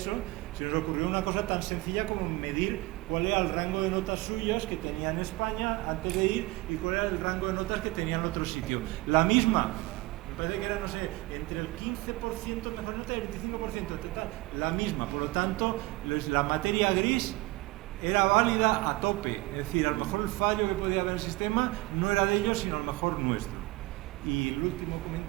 se nos ocurrió una cosa tan sencilla como medir cuál era el rango de notas suyas que tenía en España antes de ir y cuál era el rango de notas que tenía en otro sitio. La misma, parece que era, no sé, entre el 15% de nota y el 25% de nota, la misma. Por lo tanto, la materia gris era válida a tope. Es decir, a lo mejor el fallo que podía haber en el sistema no era de ellos, sino a lo mejor nuestro. Y el último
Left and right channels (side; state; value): left; quieter; 20.7 dB